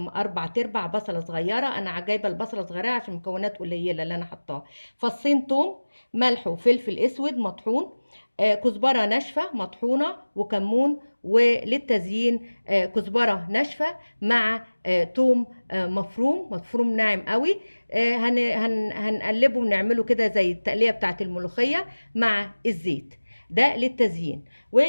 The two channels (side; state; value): both; inverted; correlation -1.00